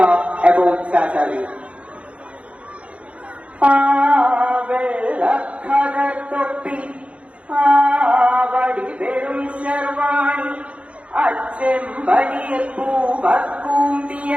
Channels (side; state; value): left; late; 0.062 ms